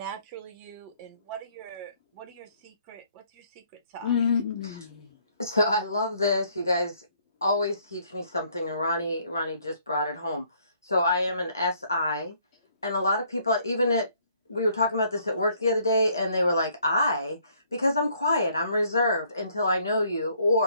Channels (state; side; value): inverted; both; correlation -0.65